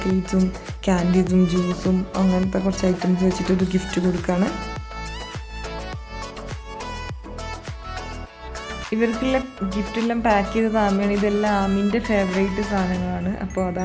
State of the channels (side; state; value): both; identical; correlation 1.00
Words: ക്യാൻഡീസും ജ്യൂസും അങ്ങനത്തെ കുറച്ച് ഐറ്റംസ് വെച്ചിട്ടൊരു ഗിഫ്റ്റ് കൊടുക്കുകയാണ്. ഇവർക്കുള്ള ഗിഫ്റ്റെല്ലാം പാക്ക് ചെയ്തത് ആമിയാണ്. ഇതെല്ലാം ആമിൻ്റെ ഫേവറേറ്റ് സാധനങ്ങളാണ്. അപ്പോൾ